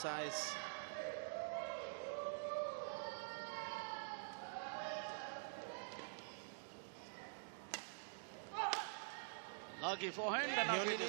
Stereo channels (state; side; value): silent; left; digital silence